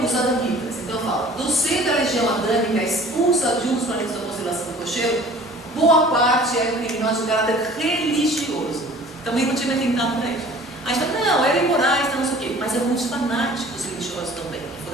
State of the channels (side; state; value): both; normal; correlation 0.48